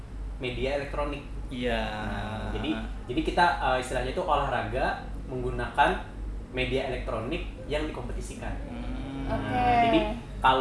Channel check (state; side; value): identical; both; correlation 1.00